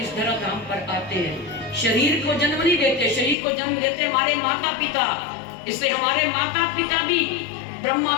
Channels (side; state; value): right; drops out; at 3.4 s